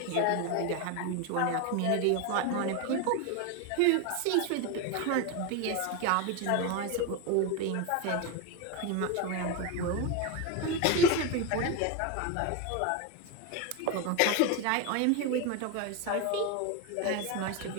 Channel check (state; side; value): different; both; correlation 0.02